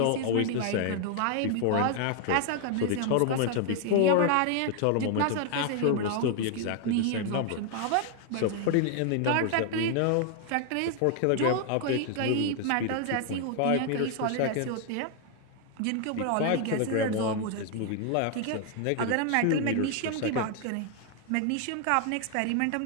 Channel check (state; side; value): different; both; correlation 0.00